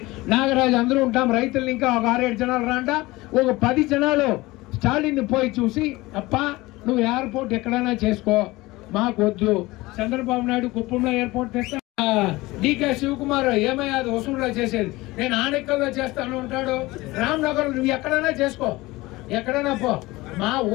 నాగరాజు అందరూ ఉంటాం. రైతులు ఇంకా ఒక 6-7 జనాలు రాండా, ఒక 10 జనాలు స్టాలిన్ పోయి చూసి అప్ప నువ్వు ఎయిర్పోర్ట్ ఎక్కడైనా చేసుకో, మాకు వద్దు. చంద్రబాబు నాయుడు కుప్పంలో ఎయిర్పోర్ట్ తెస్తా, డికే శివకుమార్ ఏమయ్యా అది వసూలులో చేసేది, నేను ఆనెక్కల్లో చేస్తాను ఉంటాడు. రామ్నగర్ నువ్వు ఎక్కడైనా చేసుకో, ఎక్కడైనా పో, మా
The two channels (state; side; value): quieter; right; 20.4 dB